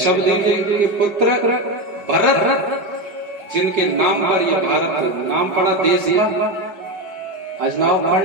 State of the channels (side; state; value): left; late; 5.0 ms